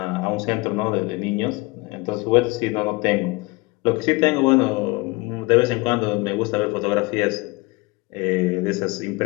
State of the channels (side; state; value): right; quieter; 24.7 dB